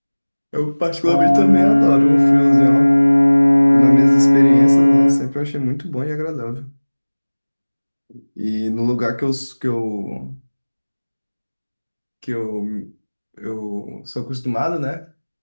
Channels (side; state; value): both; inverted; correlation -1.00